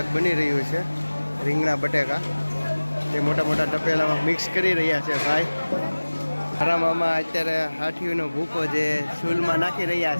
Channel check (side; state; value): both; inverted; correlation -1.00